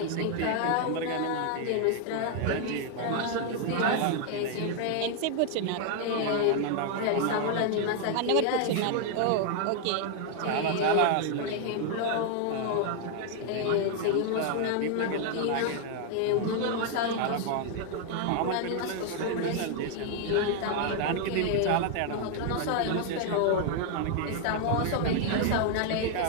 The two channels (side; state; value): both; different; correlation 0.00